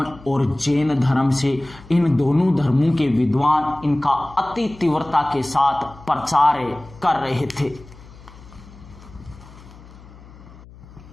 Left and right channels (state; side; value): noise; left; hum, 21 dB below the sound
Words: और जैन धर्म से। इन दोनों धर्मों के विद्वान इनका अति तीव्रता के साथ प्रचार कर रहे थे।